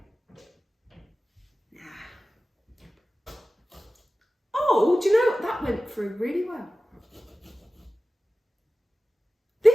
Nah. Oh, do you know what? That went through really well.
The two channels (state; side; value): normal; both; correlation 0.96